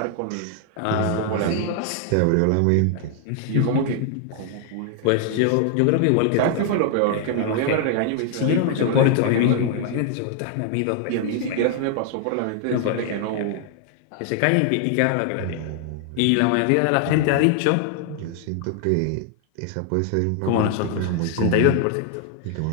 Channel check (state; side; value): different; both; correlation 0.00